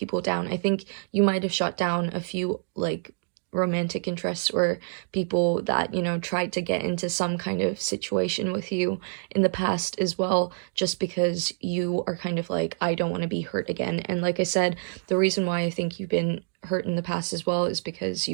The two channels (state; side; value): silent; left; digital silence